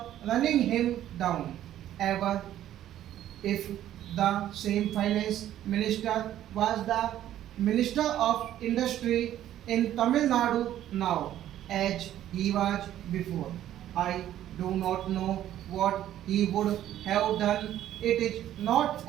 running him down. Ever if the same finance minister was the minister of industry in Tamil Nadu now as he was before. I do not know what he would have done. It is not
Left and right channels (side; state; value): left; quieter; 12.2 dB